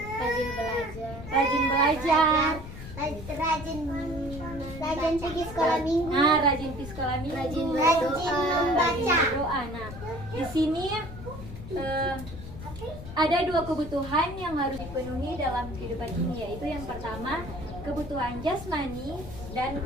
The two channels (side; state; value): left; noise; rumble, 12 dB below the sound